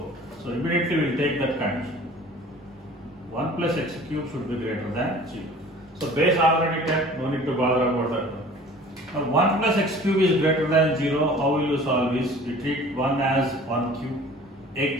So immediately we will take that condition. 1 plus x cube should be greater than 0. So base already 10, no need to bother about that one. Now 1 plus x cube is greater than 0. How will you solve this? We treat 1 as 1 cube, a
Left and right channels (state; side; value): normal; both; correlation 0.47